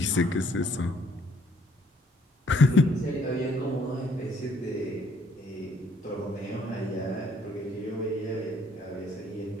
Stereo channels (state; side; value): normal; both; correlation 0.64